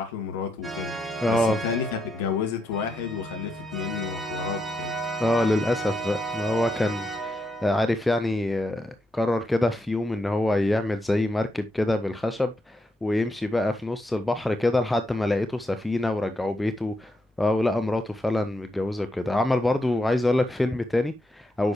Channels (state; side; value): normal; both; correlation 0.81